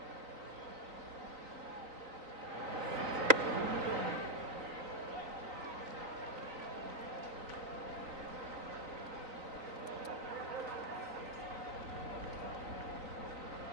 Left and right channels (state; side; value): late; left; 3.9 ms